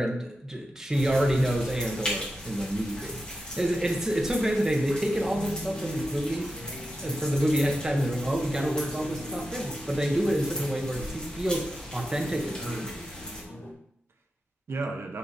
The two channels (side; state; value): both; normal; correlation 0.90